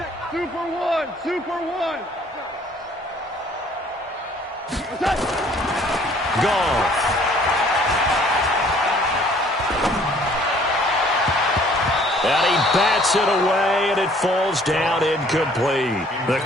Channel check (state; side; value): normal; both; correlation 0.57